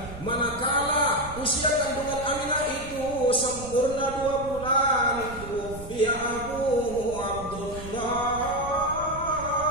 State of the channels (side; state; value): right; noise; rumble, 13 dB below the sound